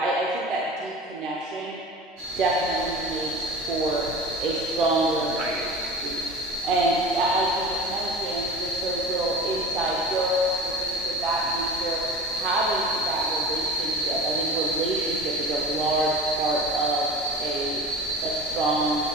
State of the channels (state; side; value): normal; both; correlation 0.34